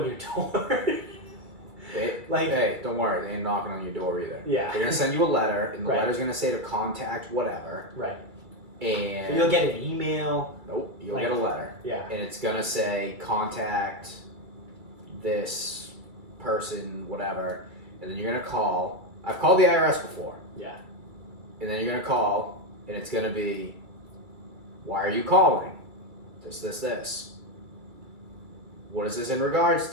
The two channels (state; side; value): late; left; 2.3 ms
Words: your door. Hey, don't worry, they ain't knocking on your door either. Yeah. They're gonna send you a letter, and the Right. letter's gonna say to contact whatever. Right. And You'll get an email. Nope, you'll Like- get a letter. Yeah. And it's gonna say contact this person, whatever, and then you're gonna call. I've called the IRS before. Yeah. And then you're gonna call, and it's gonna be, why are you calling? This. What is this in regards